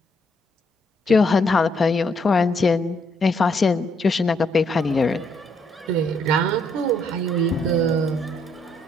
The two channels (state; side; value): normal; both; correlation 0.72